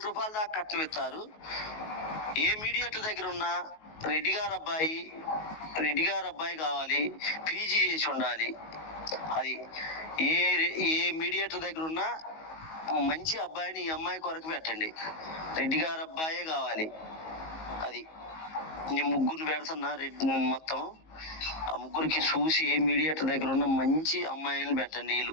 కోటి దాకా కట్నం ఇస్తారు. ఏ మీడియేటర్ దగ్గర ఉన్నా రెడ్డి గారు అబ్బాయి కావాలి, పీజీ చేసి ఉండాలి. అది ఏ మీడియేటర్ దగ్గర ఉన్నా మంచి అబ్బాయిని ఈ అమ్మాయి కొరకు పెట్టండి. రెడ్డి గారు అబ్బాయే కావాలి. అది నేను ముగ్గురిని పెడుతున్నా. మొత్తం ఆ ముగ్గురికి చూసి ఏ మీడియేటర్ దగ్గర ఉన్న మంచి అమ్మాయిని పెట్టండి. వీళ్ళు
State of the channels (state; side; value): late; right; 19 ms